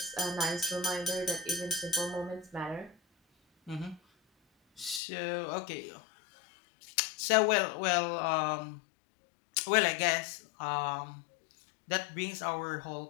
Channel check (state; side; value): drops out; right; at 5.0 s